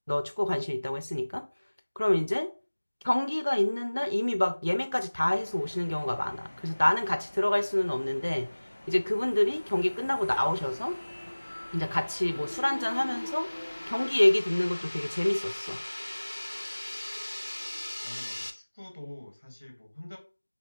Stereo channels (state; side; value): inverted; both; correlation -1.00